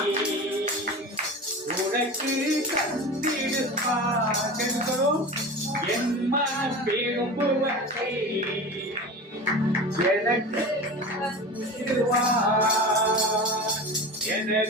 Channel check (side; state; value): both; normal; correlation 0.31